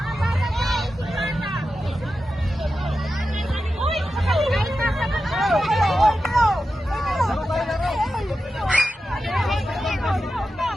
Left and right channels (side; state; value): both; normal; correlation 0.91